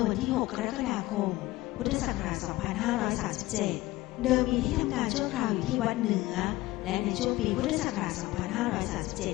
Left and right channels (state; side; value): quieter; right; 18.3 dB